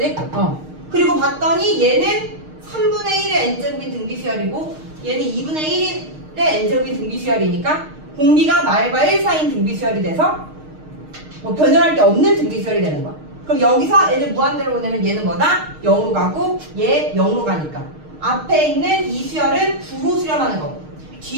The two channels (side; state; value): left; late; 6.5 ms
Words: 그리고 봤더니 얘는 3분의 1의 n제곱인 등비수열이고 얘는 2분의 1의 n제곱인 등비수열이니까 공비가 말과 1 사이인 등비수열이 돼서 뭐 변형할 게 없는 등비수열이 되는 거야. 그럼 여기서 얘를 무한대로 보내면 얘는 뭐다? 0으로 가고 얘 0으로 가니까 앞에 있는 이 수열은 9로 수렴하는 거고